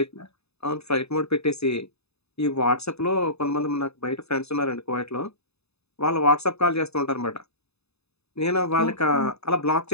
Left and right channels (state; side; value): late; right; 0.79 ms